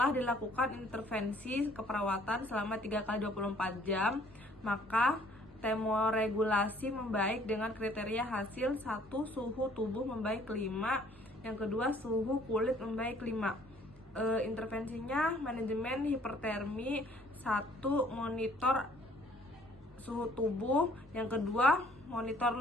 dilakukan intervensi keperawatan selama 3 kali 24 jam, maka termoregulasi membaik dengan kriteria hasil 1. Suhu tubuh membaik 5, yang kedua suhu kulit membaik 5. Intervensinya manajemen hipertermi 1. Monitor suhu tubuh, yang kedua monitor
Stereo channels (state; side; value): normal; both; correlation 0.59